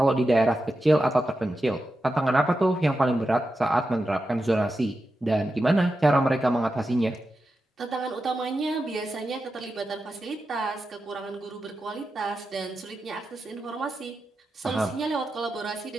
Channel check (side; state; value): both; normal; correlation 0.90